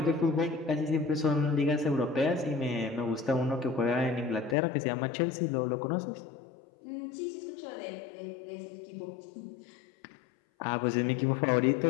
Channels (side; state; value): right; drops out; at 4.5 s